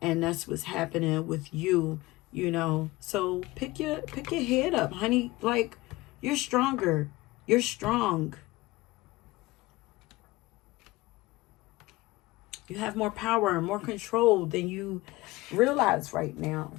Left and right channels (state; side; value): quieter; right; 20.3 dB